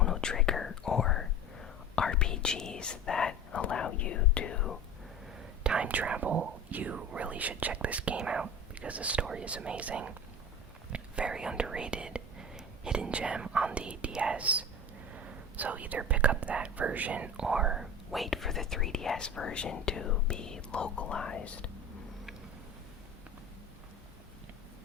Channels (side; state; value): both; normal; correlation 0.33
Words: Trigger or RPGs that allow you to time travel, you really should check this game out because the story is amazing. Very underrated hidden gem on the DS. So either pick up that version or wait for the 3DS version to be localized.